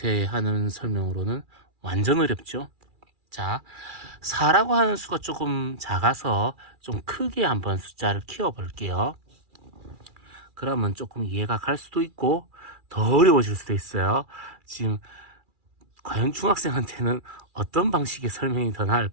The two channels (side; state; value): left; late; 2.4 ms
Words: 하는 설명으로는 완전 어렵죠. 자, 4라고 하는 수가 조금 작아서 좀 크게 한번 숫자를 키워 볼게요. 그러면 조금 이해가 갈 수도 있고 더 어려워질 수도 있어요. 지금 과연 중학생한테는 어떤 방식의 설명이 더